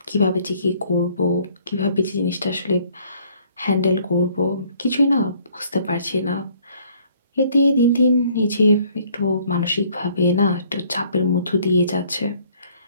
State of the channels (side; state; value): both; inverted; correlation -0.61